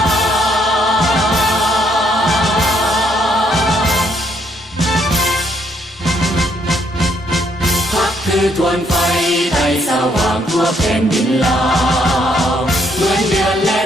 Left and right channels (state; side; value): normal; both; correlation 0.70